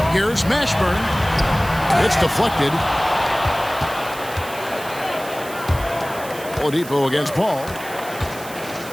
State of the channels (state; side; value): noise; right; hiss, 15 dB below the sound